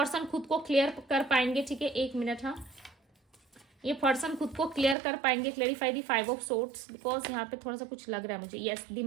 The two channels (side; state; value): left; drops out; at 5.0 s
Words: खुद को क्लियर कर पाएंगे, ठीक है। 1 मिनट, हाँ, ये पर्सन खुद को क्लियर कर पाएंगे। Clarify the 5 of swords, because यहाँ पे थोड़ा सा कुछ लग रहा है मुझे। यस, द